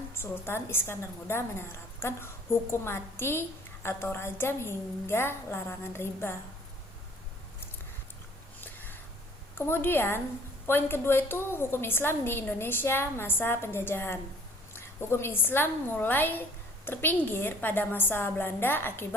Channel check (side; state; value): both; normal; correlation 0.54